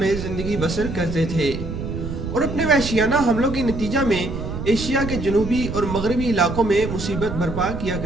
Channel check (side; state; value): right; noise; rumble, 6 dB below the sound